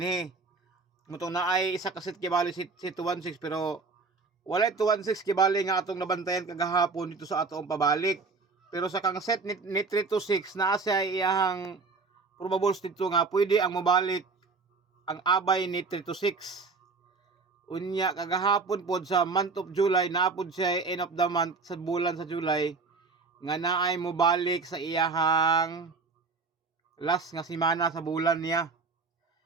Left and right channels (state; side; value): quieter; left; 4.3 dB